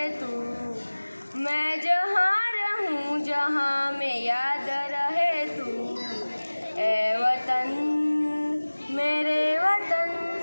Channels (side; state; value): both; inverted; correlation -1.00